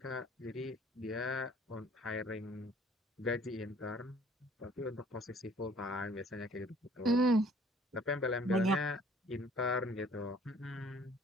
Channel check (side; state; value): both; normal; correlation 0.56